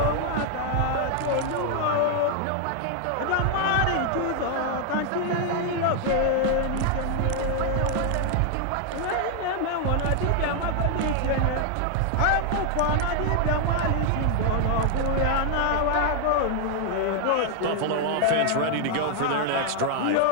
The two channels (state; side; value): different; both; correlation 0.00